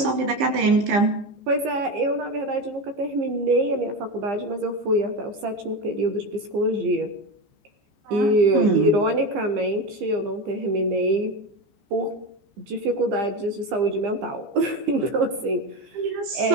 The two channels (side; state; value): left; late; 15 ms